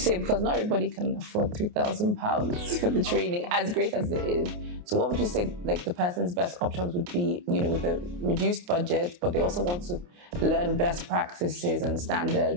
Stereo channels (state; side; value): late; left; 28 ms